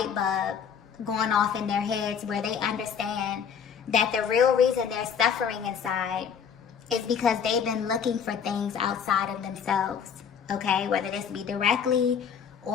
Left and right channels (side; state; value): right; quieter; 7.3 dB